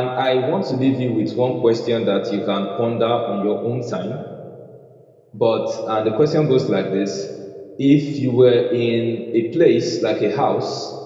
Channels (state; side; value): identical; both; correlation 1.00